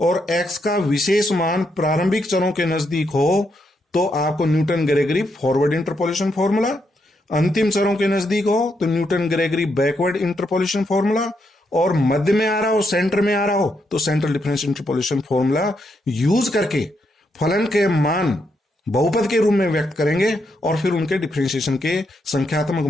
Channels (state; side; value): normal; both; correlation 0.80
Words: x का विशेष मान प्रारंभिक चरों के नजदीक हो तो आपको Newton Gregory forward interpolation formula, अंतिम चरों के नजदीक हो तो Newton Gregory backward interpolation formula, और मध्य में आ रहा हो, सेंटर में आ रहा हो तो central difference interpolation formula use करके फलन के मान बहुपद के रूप में व्यक्त करेंगे और फिर उनके डिफरेंशिएशन के संख्यात्मक